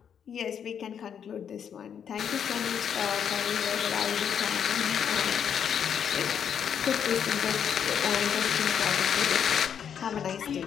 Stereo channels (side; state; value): right; quieter; 8.1 dB